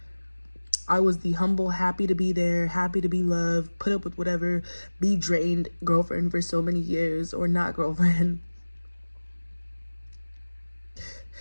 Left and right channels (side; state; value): both; inverted; correlation -1.00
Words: I was the humble, happy to be there, happy to be loved, put up with whatever, be drained girlfriend for so many years, or not girlfriend.